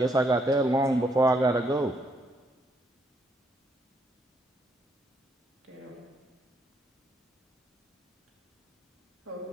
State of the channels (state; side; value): normal; both; correlation 0.73